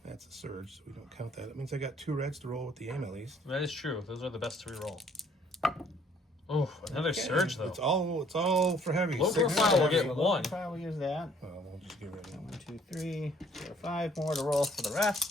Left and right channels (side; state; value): both; normal; correlation 0.61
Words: That's a surge, so we don't count that. That means I got 2 reds to roll with the aim at least. that is true. Those are the best to reroll. Oh, another surge though. It's all for heavy. Low 6 profile will heavy. get 1. We'll use that. Oh, we'll just get rid of 1, it. 2, 3, 4, 5 more to roll for the